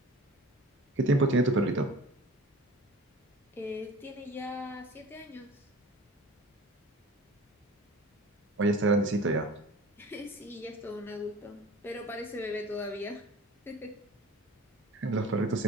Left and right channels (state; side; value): normal; both; correlation 0.42